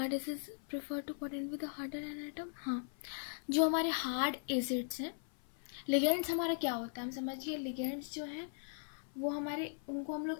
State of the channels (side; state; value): right; silent; 52 dB below the other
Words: acids prefer to coordinate with the harder an atom. हाँ, जो हमारे हार्ड एसिड्स हैं, लिगेंड्स हमारा क्या होता है हम समझिए। लिगेंड्स जो हैं वो हमारे, उनको हम